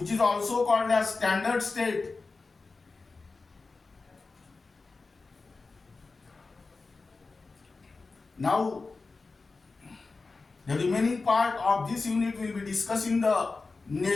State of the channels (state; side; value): quieter; right; 3.9 dB